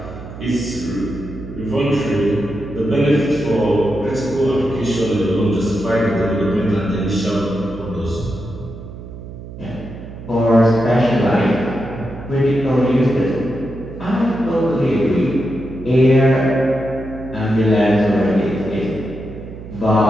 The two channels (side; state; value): right; noise; hum, 13 dB below the sound